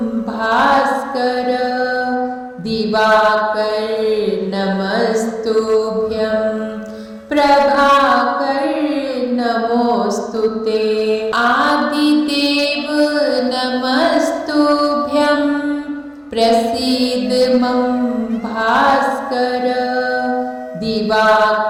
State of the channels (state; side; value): identical; both; correlation 1.00